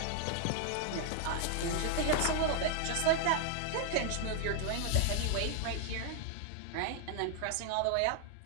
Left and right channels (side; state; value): both; different; correlation 0.00